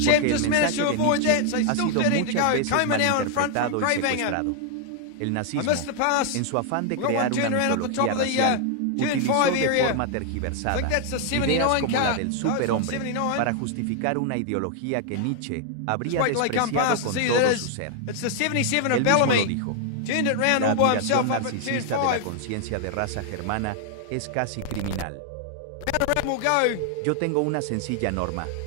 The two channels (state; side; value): different; both; correlation 0.00